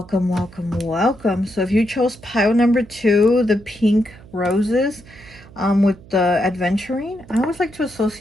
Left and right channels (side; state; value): right; noise; hum, 22 dB below the sound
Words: welcome, welcome. So if you chose pile number 2, the pink roses, with the adventuring, I always like to